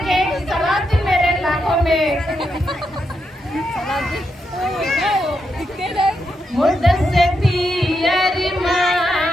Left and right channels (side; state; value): both; normal; correlation 0.83